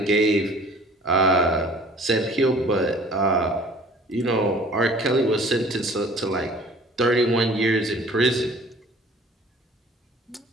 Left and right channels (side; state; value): both; normal; correlation 0.50